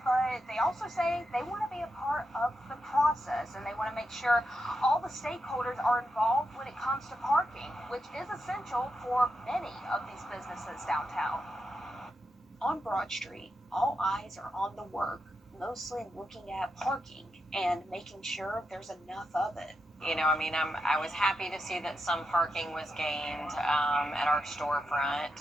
but they also say they want to be a part of the process, and they want to make sure all the stakeholders are involved when it comes to parking, which is essential for many of these businesses downtown. On Broad Street, all eyes are on the work, mostly looking at parking and making sure there's enough of it. I was happy to see that some parking was gained at our storefront,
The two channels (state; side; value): normal; both; correlation 0.86